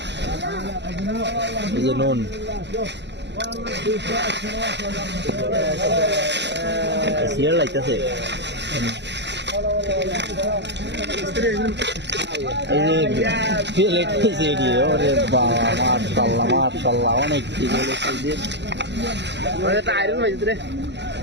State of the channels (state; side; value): late; left; 0.51 ms